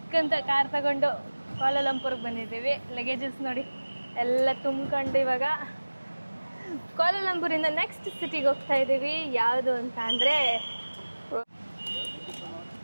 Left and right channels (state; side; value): inverted; both; correlation -1.00